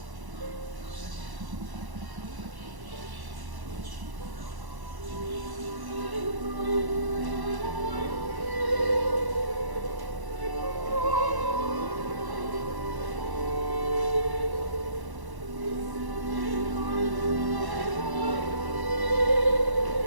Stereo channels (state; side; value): late; left; 1.1 ms